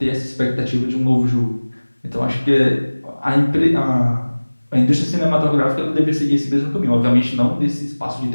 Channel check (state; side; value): inverted; both; correlation -1.00